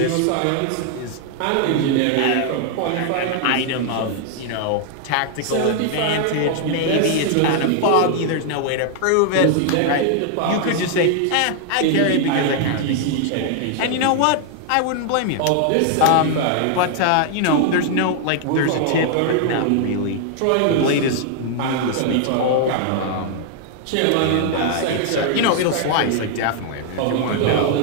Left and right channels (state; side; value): different; both; correlation 0.00